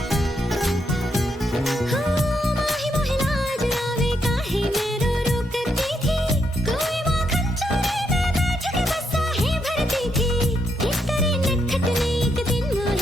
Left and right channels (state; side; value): normal; both; correlation 0.78